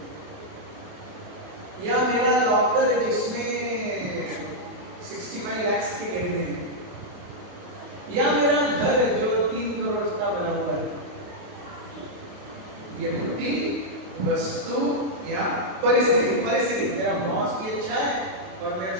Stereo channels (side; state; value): left; late; 28 ms